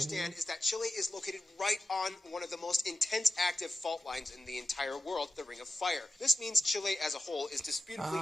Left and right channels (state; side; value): normal; both; correlation 0.91